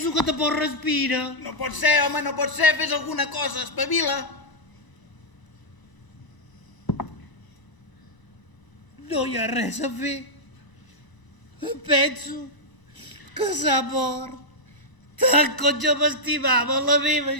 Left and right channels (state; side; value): late; right; 1.0 ms